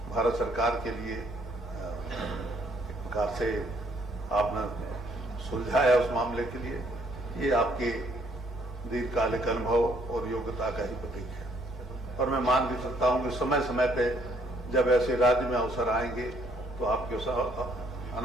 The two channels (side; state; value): both; normal; correlation 0.66